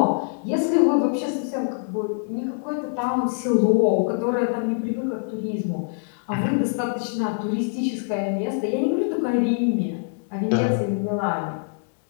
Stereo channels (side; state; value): right; silent; 60 dB below the other